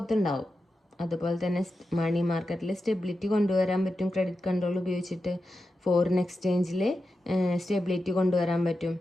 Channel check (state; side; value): normal; both; correlation 0.90